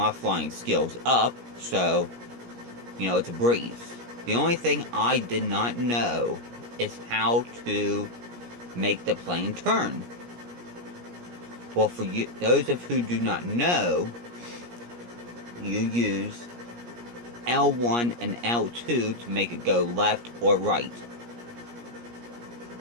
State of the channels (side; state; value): left; late; 17 ms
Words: flying skills up, so, you know, it's a breeze. The only thing I did not know is how to make the plane turn. Well, for you, those of who do not know, you use L1 and L2 to make it go left or right.